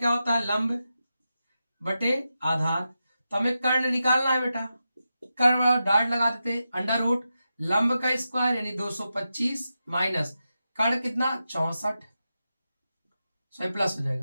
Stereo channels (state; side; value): inverted; both; correlation -0.90